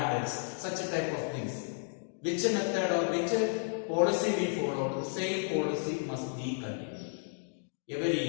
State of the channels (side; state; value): right; silent; 56 dB below the other